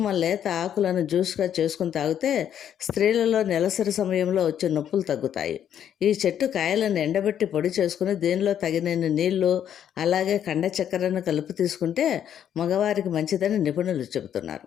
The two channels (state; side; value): quieter; right; 9.6 dB